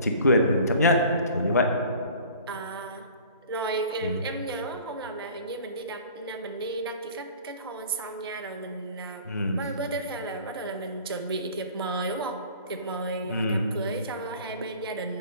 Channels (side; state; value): both; inverted; correlation -0.46